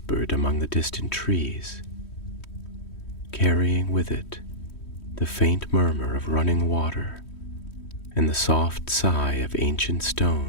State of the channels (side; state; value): right; late; 3.1 ms